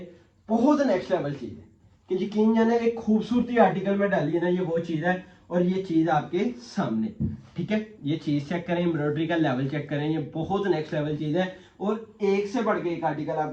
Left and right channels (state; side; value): identical; both; correlation 1.00